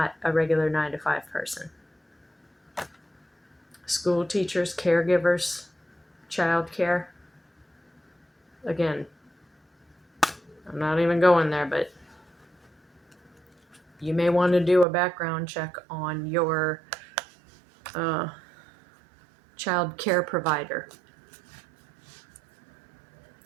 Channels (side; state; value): left; drops out; at 14.9 s